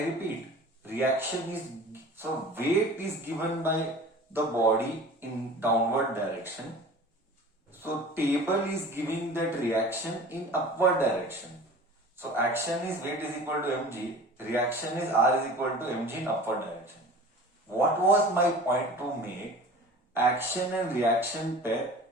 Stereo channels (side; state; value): both; normal; correlation 0.41